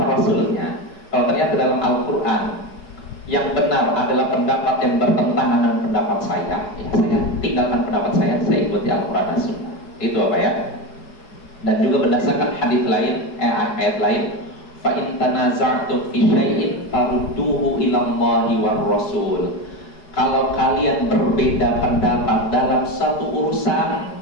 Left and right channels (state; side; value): late; right; 4.8 ms